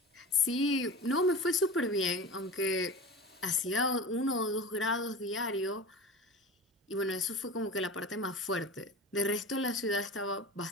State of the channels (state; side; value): normal; both; correlation 0.32